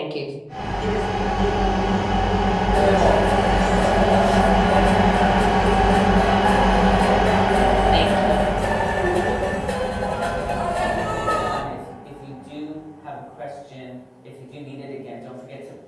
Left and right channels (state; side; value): identical; both; correlation 1.00